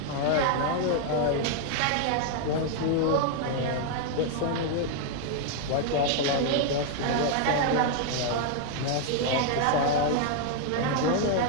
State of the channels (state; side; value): different; both; correlation 0.00